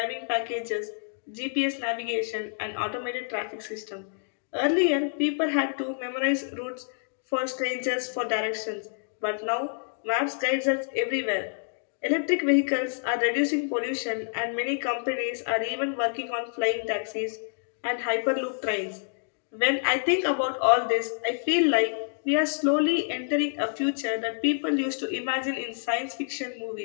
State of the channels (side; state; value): right; silent; digital silence